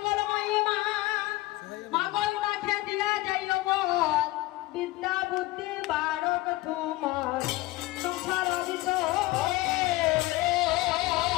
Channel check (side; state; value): right; quieter; 18.9 dB